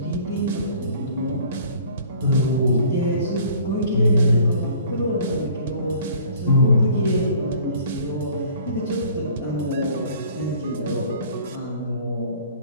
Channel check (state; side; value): inverted; both; correlation -0.52